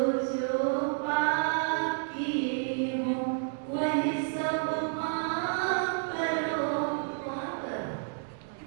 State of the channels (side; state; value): left; silent; digital silence